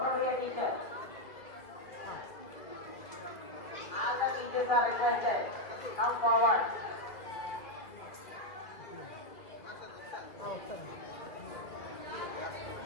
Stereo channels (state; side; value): late; right; 1.6 ms